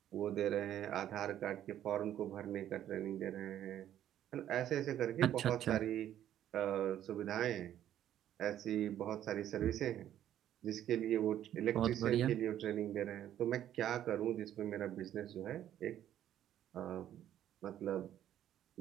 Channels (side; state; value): left; quieter; 11.3 dB